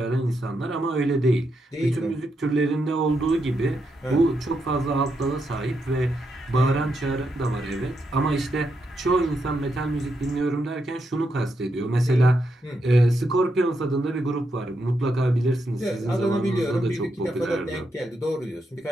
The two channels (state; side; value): normal; both; correlation 0.82